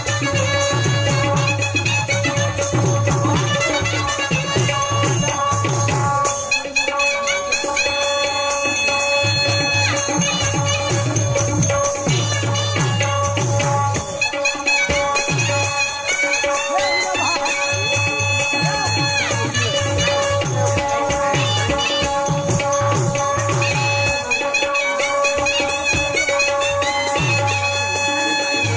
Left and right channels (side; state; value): both; identical; correlation 1.00